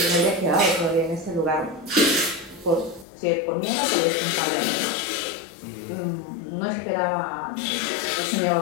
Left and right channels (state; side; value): drops out; right; at 3.1 s